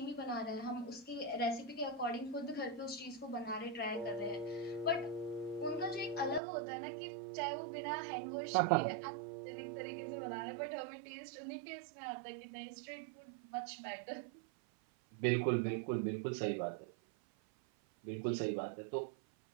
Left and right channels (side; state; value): left; drops out; at 6.4 s